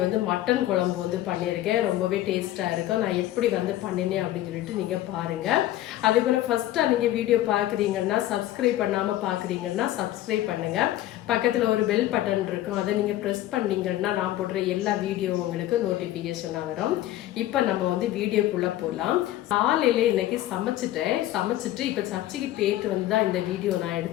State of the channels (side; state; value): right; quieter; 14.2 dB